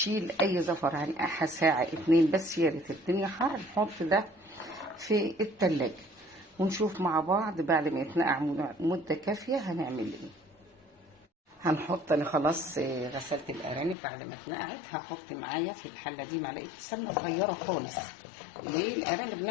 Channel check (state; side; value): drops out; right; at 14.0 s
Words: اي زفر. هنقعها ساعة 2 بس، يا ريت الدنيا حر نحط ده في التلاجة ونشوف مع بعض بعد ما يتنقع مدة كافية هنعمل ايه. هنحط، انا خلاص غسلت الارانب بعد ما اتنقعت. هحط معايا في الحلة دي معلقة سمنة صغيرة خالص. ليه؟ الارانب